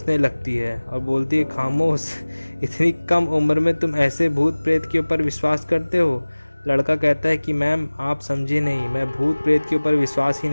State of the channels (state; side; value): inverted; both; correlation -1.00